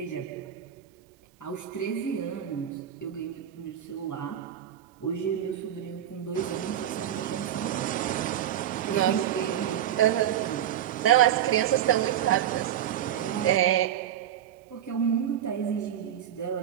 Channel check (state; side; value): quieter; left; 10.5 dB